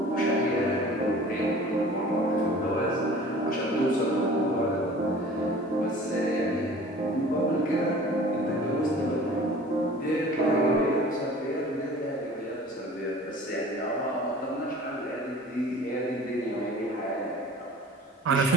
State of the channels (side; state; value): both; normal; correlation 0.45